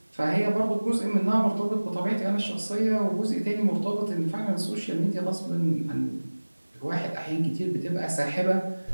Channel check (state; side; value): inverted; both; correlation -1.00